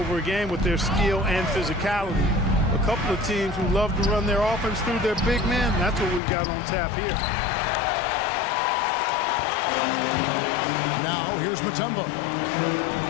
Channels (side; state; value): right; drops out; at 6.2 s